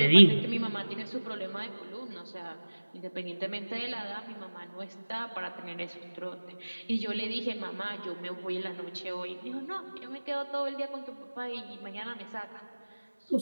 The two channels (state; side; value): inverted; both; correlation -1.00